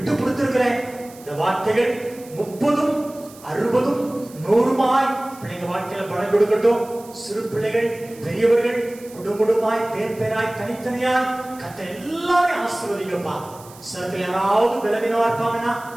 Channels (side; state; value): right; noise; hiss, 21 dB below the sound